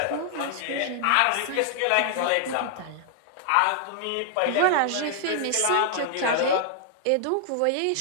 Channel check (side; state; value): both; different; correlation -0.01